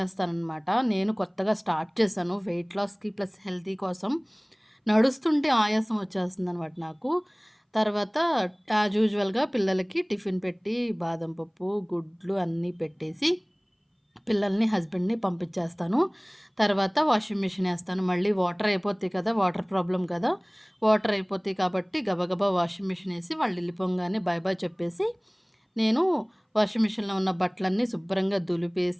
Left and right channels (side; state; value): both; identical; correlation 1.00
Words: నేను కొత్తగా స్టార్ట్ చేశాను వెయిట్ లాస్‌కి ప్లస్ హెల్తీ కోసం. నడుస్తుంటే ఆయాసం వచ్చేస్తుందనమాట నాకు. తర్వాత యాజ్ యూజువల్‌గా పిల్లలకి టిఫిన్ పెట్టి బాదం పప్పు, గుడ్లు అన్నీ పెట్టేసి పిల్లల్ని, హస్బెండ్‌ని పంపించేస్తాను. తర్వాత వాషింగ్ మిషన్ ఏస్తాను. మళ్ళీ వాటర్ అయిపోతాయి కదా! వాటర్ ప్రాబ్లమ్ కదా! వాటర్ అయిపోతాయి కాబట్టి గబగబా వాషింగ్ మిషన్ ఏసి వాళ్ళు వెళ్ళిపోంగానే బాయ్ బాయ్ చెప్పేసి, నేను వాషింగ్ మిషన్‌లో ఉన్న బట్టలన్నీ శుభ్రంగా